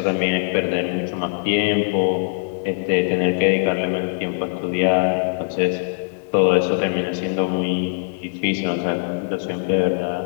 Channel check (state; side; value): silent; right; digital silence